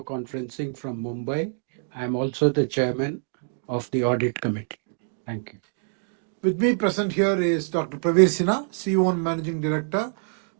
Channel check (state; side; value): silent; left; digital silence